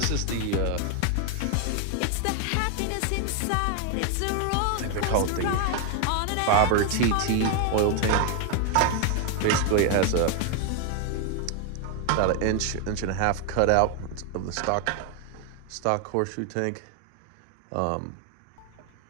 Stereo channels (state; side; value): different; both; correlation 0.00